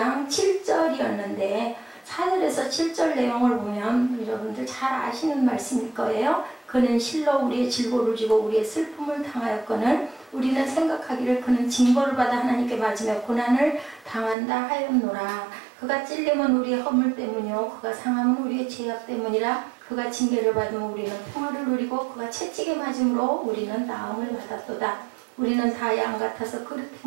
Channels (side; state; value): left; drops out; at 14.4 s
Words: 7절이었는데 4절에서 7절 내용을 보면 여러분들 잘 아시는 말씀일 거예요. 그는 실로 우리의 질고를 지고 우리의 슬픔을 당하였거늘 우리는 생각하기를 그는 징벌을 받아 하나님께 맞으며 고난을 당한다 하였노라. 그가 찔림은 우리의 허물 때문이요 그가 상함은 우리의 죄악 때문이라. 그가 징계를 받으면 우리는 평화를 누리고 그가 채찍에 맞음으로 우리는 나음을 받았도다. 우리는 다 양 같아서 그릇